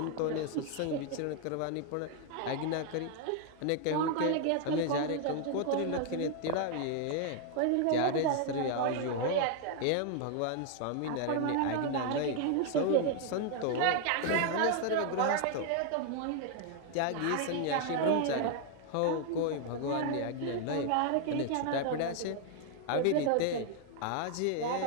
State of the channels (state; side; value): different; both; correlation 0.00